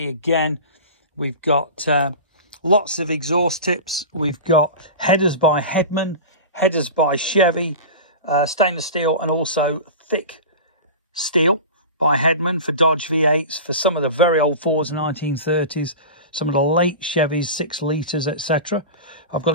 again. We've got lots of exhaust tips. We've got headers by Headman, headers by Chevy, stainless steel, and also thick steel by Headman for Dodge V8s, for some of the very old Fords, 1930s, some of the late Chevys, 6 litres, etc. I've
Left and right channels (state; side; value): inverted; both; correlation -0.31